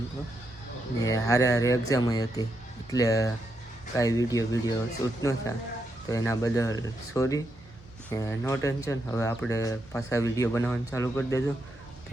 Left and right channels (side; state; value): both; normal; correlation 0.82